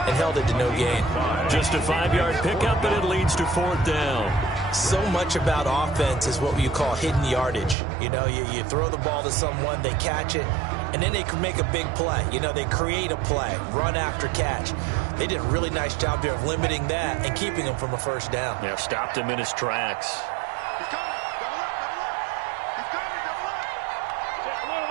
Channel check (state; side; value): drops out; left; at 7.8 s